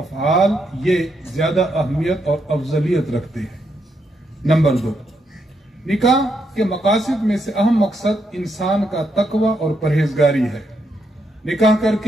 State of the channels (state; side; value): normal; both; correlation 0.79